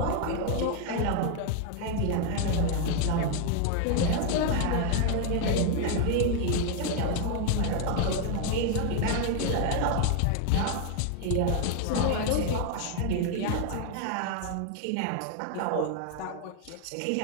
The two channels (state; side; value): different; both; correlation 0.01